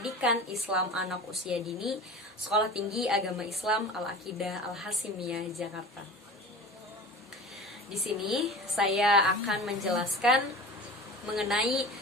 Islam Anak Usia Dini, Sekolah Tinggi Agama Islam Al-Aqidah Al-Hasimiyah, Jakarta. Di sini saya akan menjelaskan mengenai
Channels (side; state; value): both; normal; correlation 0.36